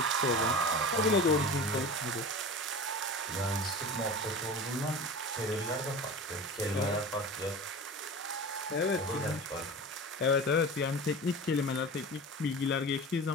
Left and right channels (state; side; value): normal; both; correlation 0.33